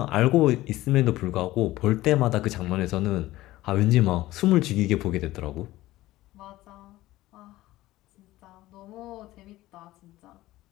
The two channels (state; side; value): quieter; right; 16.9 dB